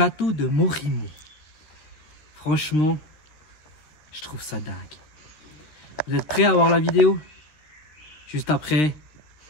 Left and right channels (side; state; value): right; late; 13 ms